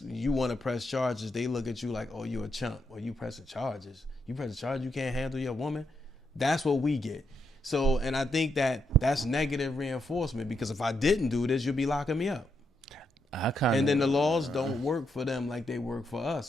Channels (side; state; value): both; normal; correlation 0.80